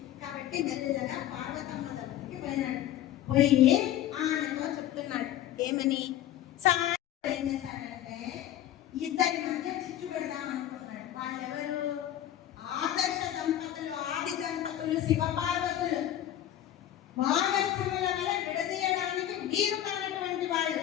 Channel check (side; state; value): right; quieter; 11.9 dB